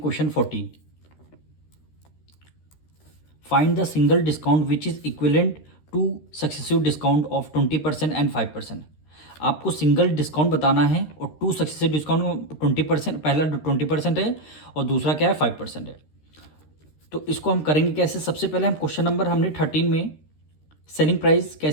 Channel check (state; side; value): late; right; 13 ms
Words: 14। Find the single discount which is equivalent two successive discount of 20% and 5%। आपको single discount बताना है और टू सक्सेसिव डिस्काउंट 20%, पहला 20% है और दूसरा क्या है 5% है। तो इसको हम करेंगे कैसे। सबसे पहले हम क्वेश्चन नंबर हमने 13 में सेलिंग प्राइस